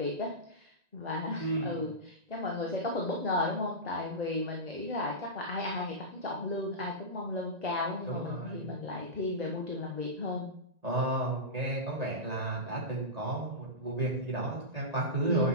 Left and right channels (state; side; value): late; left; 1.9 ms